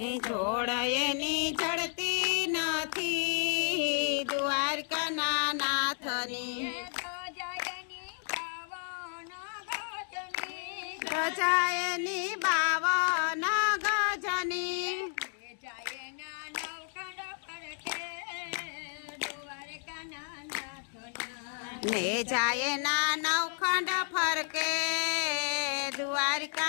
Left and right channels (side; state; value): right; silent; 56 dB below the other